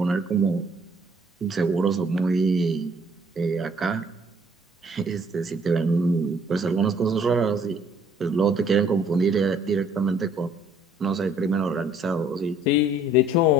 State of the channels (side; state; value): both; normal; correlation 0.60